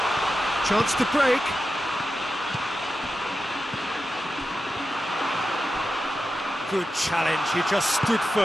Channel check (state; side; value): normal; both; correlation 0.90